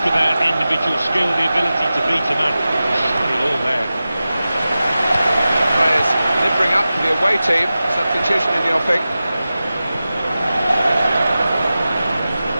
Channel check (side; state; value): both; inverted; correlation -0.94